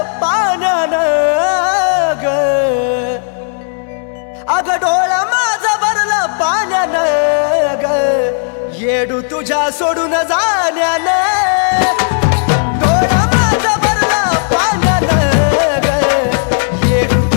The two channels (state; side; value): silent; right; digital silence